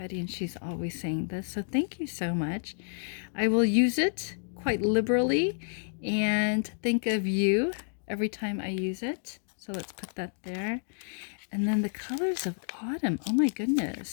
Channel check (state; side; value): silent; right; digital silence